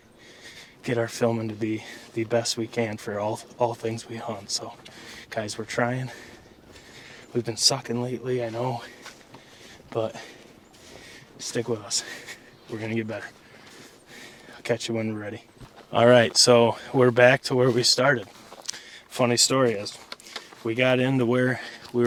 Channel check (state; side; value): identical; both; correlation 1.00